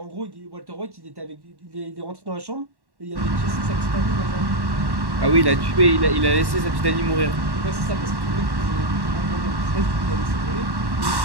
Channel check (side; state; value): left; late; 1.1 ms